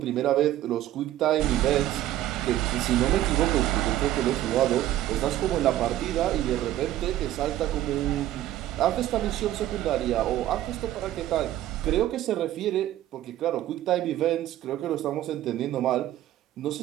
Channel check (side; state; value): left; quieter; 13.6 dB